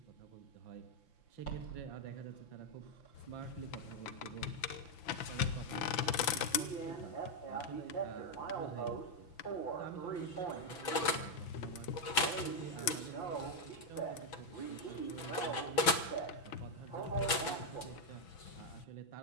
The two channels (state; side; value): late; right; 6.0 ms